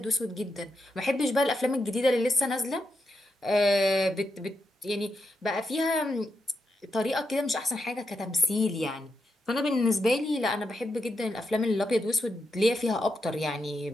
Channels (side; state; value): both; normal; correlation 0.84